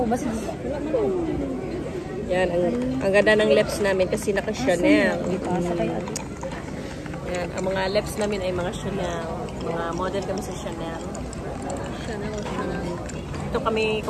ba signal? Yan, ang ganda ng lips namin kasi naka-Chanel. Yan, ang mga lips namin ay mga Chanel. Mga model kami sa Chanel. Ito kami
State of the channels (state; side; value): identical; both; correlation 1.00